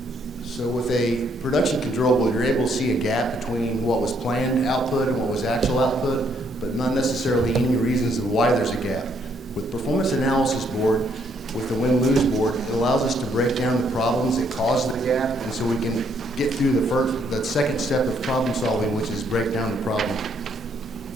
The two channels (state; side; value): normal; both; correlation 0.70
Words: So with a production control board, you're able to see a gap between what was planned output and what was actual output, but not necessarily any reasons of why there's a gap. With performance analysis board, with the win-lose board, it allows us to break down the problems that caused the gap, and so we can get through the second step of problem solving, which is break down the problem.